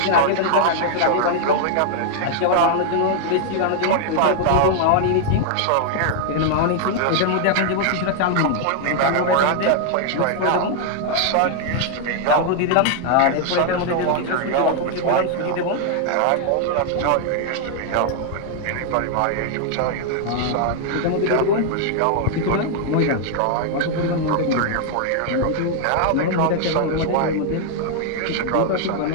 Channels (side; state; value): both; different; correlation 0.00